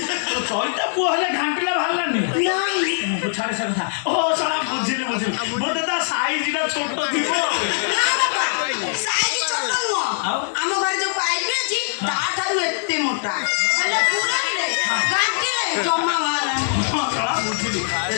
ଚଇଟା ପୁଅ ହେଲେ ଘାଣ୍ଟିଲା ବାହାରିଲାନି ନାଇଁ ଛାଡେ ସେ କଥା। ଓ ଶଳା ବୁଝିଲି ବୋଧେ ତା ସାଇଜଟା ଛୋଟ ଥିବ। ନା ବାପା ସାଇଜ ଛୋଟ ନୁହଁ। ଆମ ଘରେ ଯୋଉ ପାଇପ ଅଛି ତାଠାରୁ ଏତେ ମୋଟା ହେଲେ ପୁରେଇଲେ ଘାଣ୍ଟିଲେ ଜମା ବାହାରିଲାନି। ଶଳା ବୁଝିଲି ଏ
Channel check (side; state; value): right; silent; digital silence